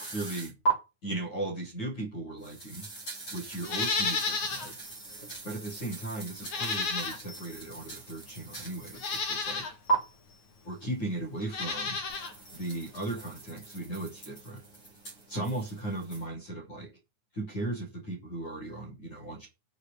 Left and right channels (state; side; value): late; right; 9.5 ms